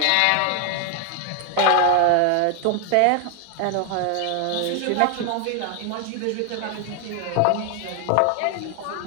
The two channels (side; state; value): both; different; correlation 0.00